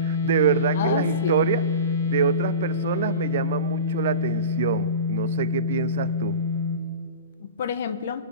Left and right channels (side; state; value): both; inverted; correlation -0.32